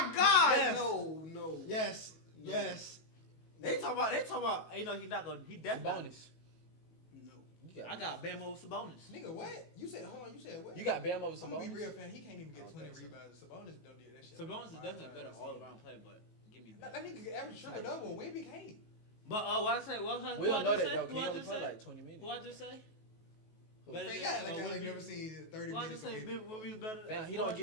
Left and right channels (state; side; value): late; right; 19 ms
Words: God! Yes. No. Yes. They talk about. You know, he not gonna. He definitely. Bonus. No. I got Bamo Sabonis. Nigga, what? You said, hold on, you said what? You got Bam over I'm gonna be Sabonis. real, fan. He can't even get I don't 20 think so. rebounds. Sabonis don't do that shit. Sabonis is Five definitely a times better a all season. around player, but give me That Bam. nigga can average triple double. Wemby can't. But what I say? What We don't know that though. Who He I only just play say? like 20 minutes. Who I just say? Better Man, than, yeah, like I Wemby? ain't never seen 30 Who I minutes just of say? Wemby. Wemby's better. Man, he Who I don't get